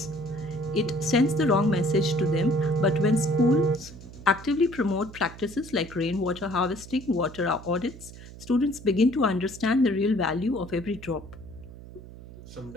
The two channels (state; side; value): noise; right; hum, 16 dB below the sound